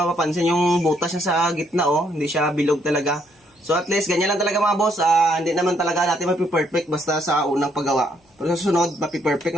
yung butas niya sa gitna oh, hindi siya bilog talaga. So at least ganyan lang talaga mga boss, hindi naman talaga natin mapi-perfect basta sa unang paggawa. Pero sa susunod, mapi-perfect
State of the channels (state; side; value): normal; both; correlation 0.71